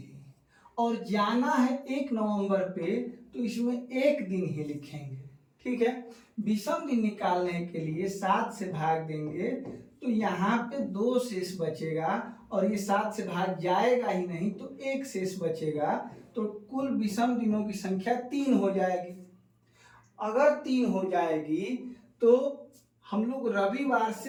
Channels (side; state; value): both; identical; correlation 1.00